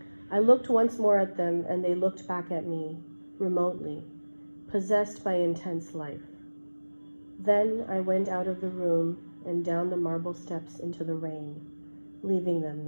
I looked once more at them, and they looked back at me, remotely, possessed by intense life. Then I went out of the room and down the marble steps into the rain, leaving them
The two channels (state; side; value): inverted; both; correlation -1.00